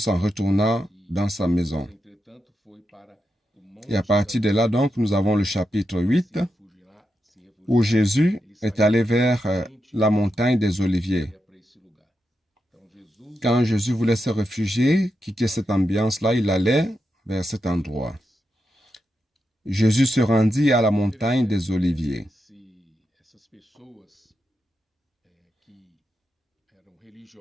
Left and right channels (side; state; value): both; normal; correlation 0.86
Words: retourna dans sa maison. Et à partir de là, donc, nous avons le chapitre 8, où Jésus est allé vers la montagne des Oliviers. Quand Jésus voulait se réfugier, quitter cette ambiance-là, il allait vers cet endroit. Jésus se rendit à la montagne des Oliviers.